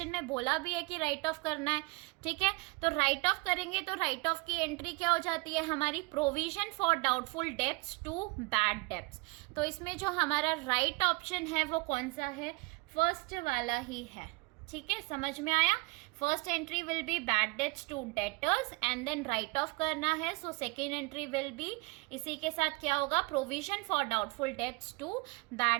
में बोला भी है कि राइट ऑफ करना है, ठीक है। तो राइट ऑफ करेंगे तो राइट ऑफ की एंट्री क्या हो जाती है हमारी, provision for doubtful debts to bad debts. तो इसमें जो हमारा राइट ऑप्शन है वो कौन सा है, फर्स्ट वाला ही है। ठीक है, समझ में आया। First entry will be bad debts to debtors and then write off करना है। So second entry will be इसी के साथ क्या होगा, provision for doubtful debts to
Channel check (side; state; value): left; quieter; 26.7 dB